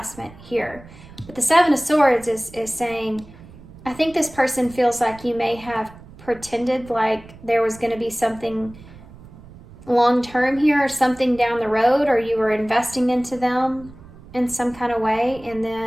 here. But the Seven of Swords is saying, I think this person feels like you may have pretended like there was going to be something long-term here, or something down the road, or you were investing into them in some kind of way, and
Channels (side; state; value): right; noise; rumble, 20 dB below the sound